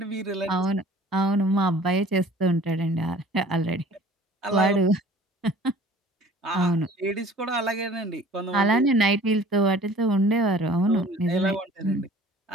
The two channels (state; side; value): normal; both; correlation 0.49